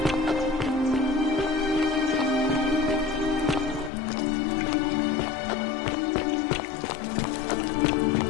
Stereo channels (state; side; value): drops out; right; at 3.9 s